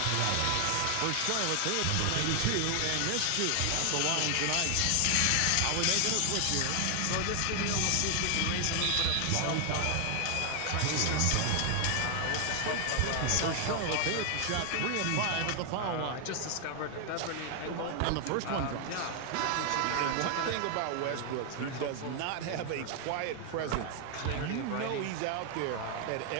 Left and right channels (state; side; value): different; both; correlation 0.00